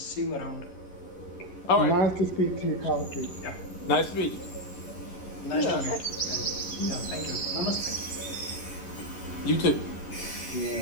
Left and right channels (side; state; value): right; late; 11 ms